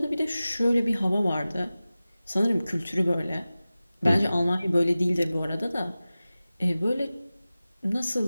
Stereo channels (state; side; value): inverted; both; correlation -0.96